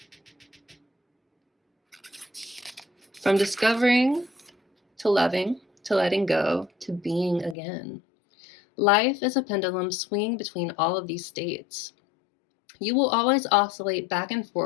from discovering to loving, to letting go, to being again. Life is a pendulum swinging between all of these states. You will always oscillate back and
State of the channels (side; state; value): right; drops out; at 7.6 s